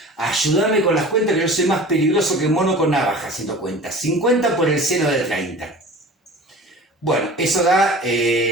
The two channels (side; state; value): both; normal; correlation 0.39